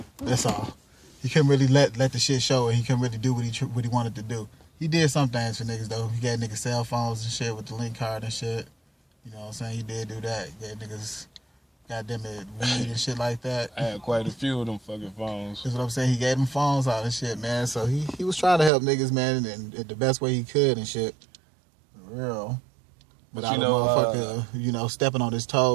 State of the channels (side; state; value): left; drops out; at 18.7 s